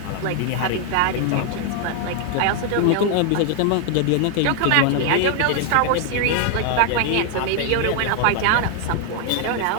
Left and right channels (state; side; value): different; both; correlation 0.00